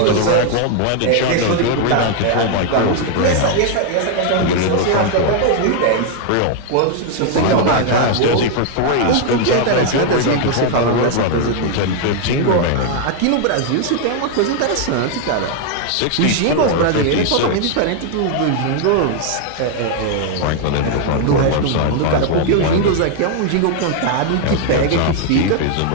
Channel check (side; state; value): both; different; correlation 0.00